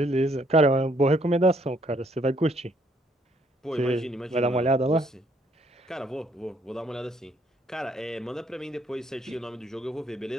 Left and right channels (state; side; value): normal; both; correlation 0.68